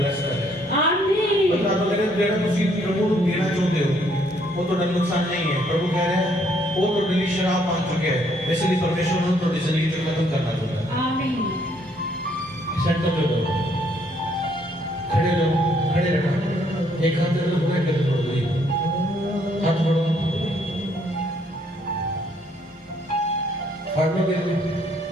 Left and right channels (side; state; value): both; normal; correlation 0.68